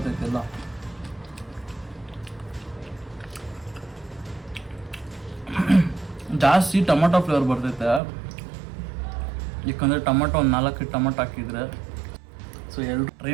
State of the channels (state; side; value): drops out; left; at 8.0 s